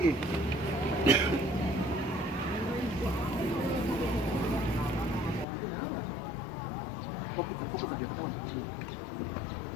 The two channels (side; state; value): right; drops out; at 5.5 s